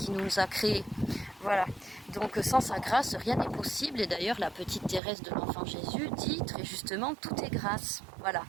nous a créés. Voilà. Donc sans sa grâce, rien n'est possible. Et d'ailleurs, la petite Thérèse de l'Enfant Jésus dit très justement, tout est grâce. Voilà.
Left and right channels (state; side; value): drops out; left; at 5.0 s